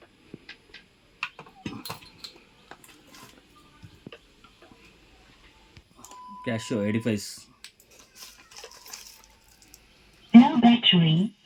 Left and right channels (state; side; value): identical; both; correlation 1.00